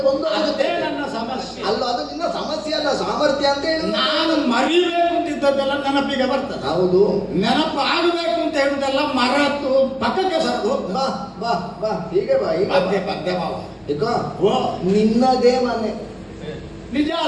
ಬಂದು ಅದೇ ನನ್ನ ಸಮಸ್ಯೆ ಅಲ್ಲ. ಅದು ನಿನ್ನ ಸಮಸ್ಯೆ ಅಲ್ಲ, ಸಾಮರ್ಥ್ಯ ಅಂತ ಹೇಳಿ. ನಾನು ಮರಿಬೇಕು ಅಂತಿದ್ದದ್ದೆಲ್ಲ ನೆನಪಿಗೆ ಬರ್ತದೆ. ಹೌದು, ನೆನಪು ಆಗಬೇಕು ಅಂತ ಹೇಳುದೆಲ್ಲ ಮರೆತು ಪಕ್ಕಕ್ಕೆ ಸರದು. ಬಾ ಬಾ ಬಾ, ಹೀಗೆ ಬಾ, ಹೀಗೆ ಪದ್ಯ ಪದ್ಯ ಮಾವ. ಓ, ನಿನ್ನದೇ ಮನೆ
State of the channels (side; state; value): both; identical; correlation 1.00